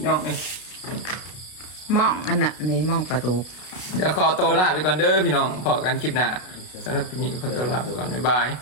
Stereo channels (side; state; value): right; late; 33 ms